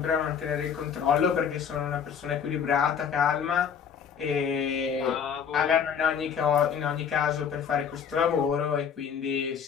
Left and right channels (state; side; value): quieter; right; 7.3 dB